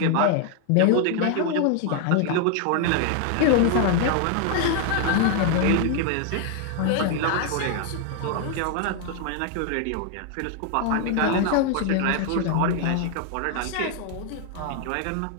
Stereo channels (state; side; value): different; both; correlation 0.00